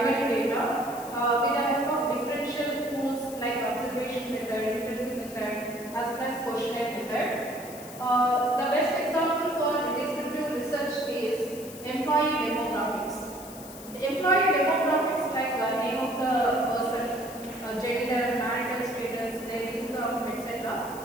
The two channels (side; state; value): left; noise; hiss, 16 dB below the sound